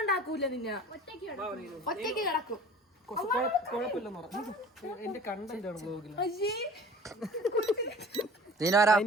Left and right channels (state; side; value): normal; both; correlation 0.44